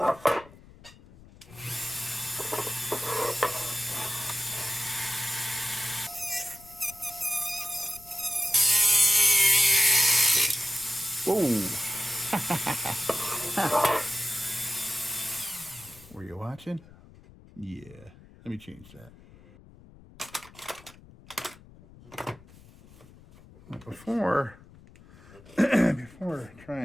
Whoa! Were you watching? Yeah. Let me change that. Before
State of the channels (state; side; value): noise; left; rumble, 22 dB below the sound